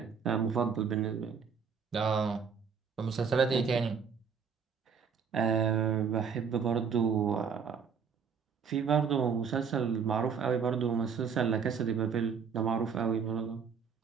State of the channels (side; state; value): left; quieter; 6.4 dB